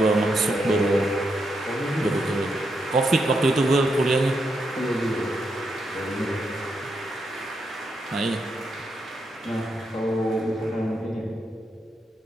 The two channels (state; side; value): normal; both; correlation 0.82